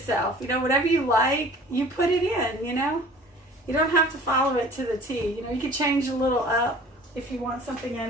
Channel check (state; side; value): normal; both; correlation 0.47